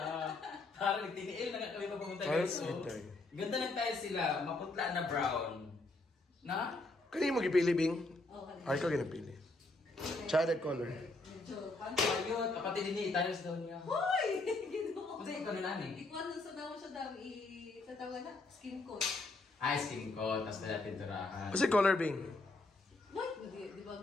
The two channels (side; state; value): right; quieter; 3.1 dB